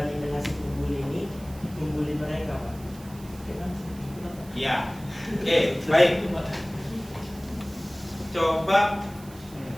dengan si pembuli ini membuli mereka, Pak. Iya. Oke, baik. Coba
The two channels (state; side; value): noise; right; hiss, 21 dB below the sound